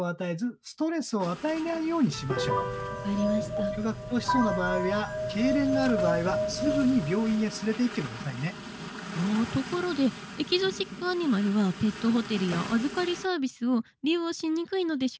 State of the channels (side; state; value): both; identical; correlation 1.00